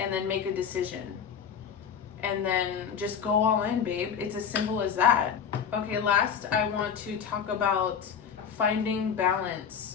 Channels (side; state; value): right; quieter; 7.3 dB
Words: then make a decision. And then just go all in, babe. It's as simple as that. Okay, last I want to talk about finding